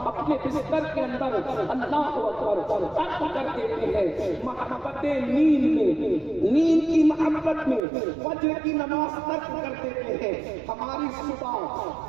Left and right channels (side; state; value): left; drops out; at 7.8 s